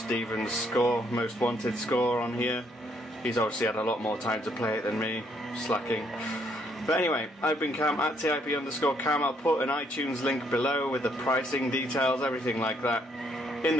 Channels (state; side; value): normal; both; correlation 0.70